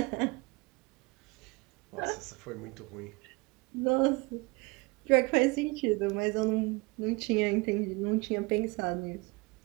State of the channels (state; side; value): quieter; left; 26.3 dB